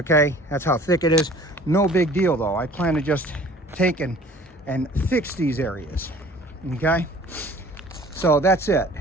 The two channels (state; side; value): normal; both; correlation 0.49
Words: that's how thick it is. No big deal though. I plan to just take and fix these areas, okay? So that's it.